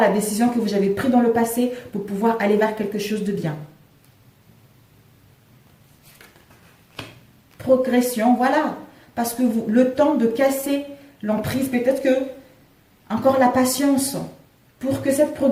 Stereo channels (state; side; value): identical; both; correlation 1.00